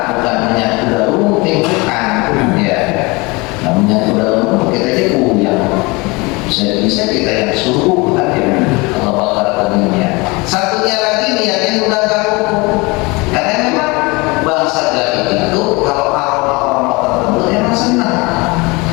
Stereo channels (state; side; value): quieter; right; 25.5 dB